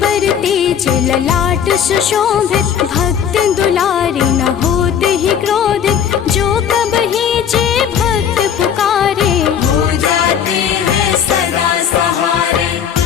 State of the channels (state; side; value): quieter; right; 8.4 dB